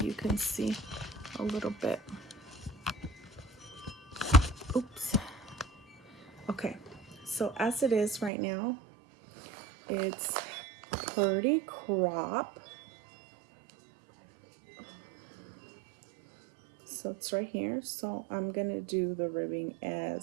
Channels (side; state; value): left; drops out; at 8.3 s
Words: you can see a little bit. Oops. Okay, so as it is right now, it's pretty crop. So it's right here. So I'm gonna do the ribbing